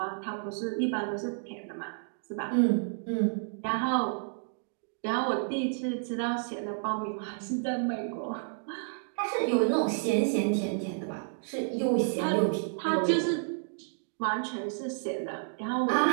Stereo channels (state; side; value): silent; left; digital silence